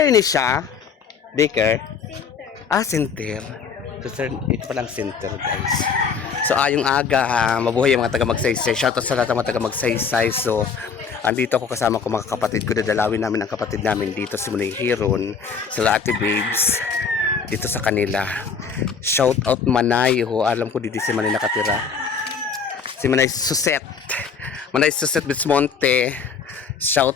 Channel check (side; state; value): right; quieter; 5.9 dB